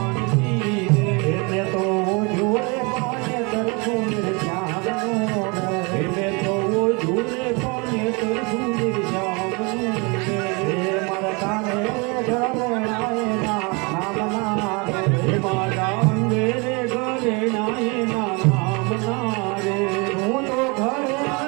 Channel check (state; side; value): quieter; left; 29.6 dB